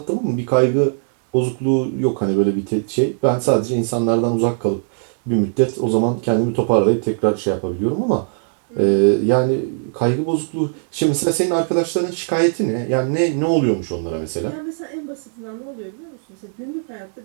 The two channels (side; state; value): left; silent; digital silence